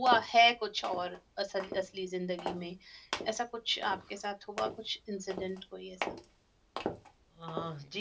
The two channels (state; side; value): identical; both; correlation 1.00